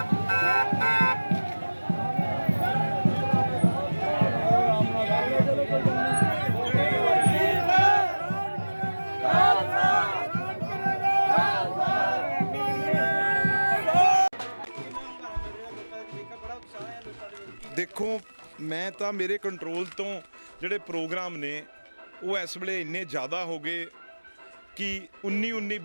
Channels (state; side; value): inverted; both; correlation -1.00